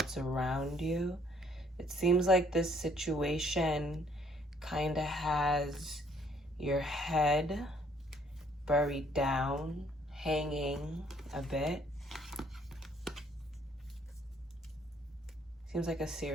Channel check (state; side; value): normal; both; correlation 0.64